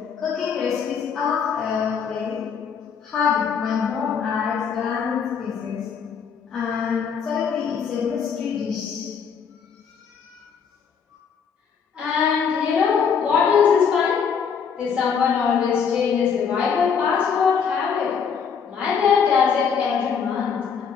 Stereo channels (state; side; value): quieter; right; 6.7 dB